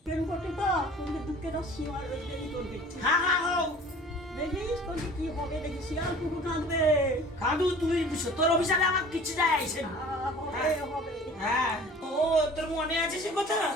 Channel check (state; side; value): normal; both; correlation 0.46